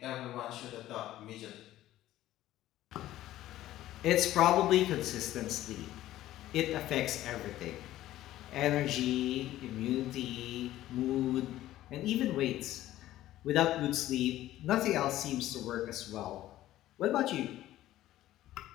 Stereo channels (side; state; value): right; quieter; 14.4 dB